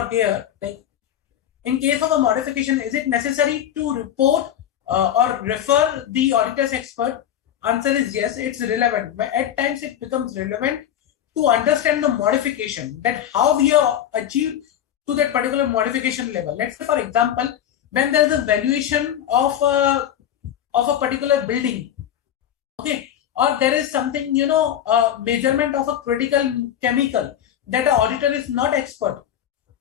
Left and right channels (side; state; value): right; quieter; 10.4 dB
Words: here, like in case of a modification, is it necessary to report or refer the auditor's expert? Answer is yes, it's relevant. But at times it becomes relevant to understand the modification, that how we have achieved to that particular modification level. Let's say, for example, when there is a valuation of a particular building, okay, or there is something, measurement of a critical chemical that an auditor is not expert.